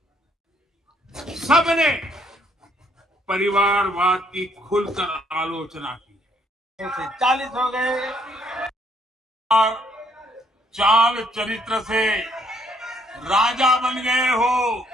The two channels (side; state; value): both; normal; correlation 0.68